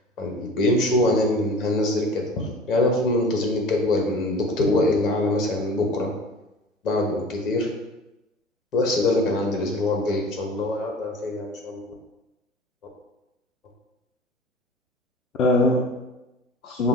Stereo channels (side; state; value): both; normal; correlation 0.42